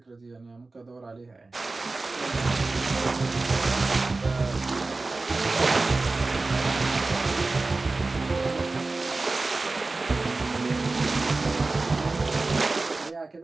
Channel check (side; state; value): left; quieter; 3.5 dB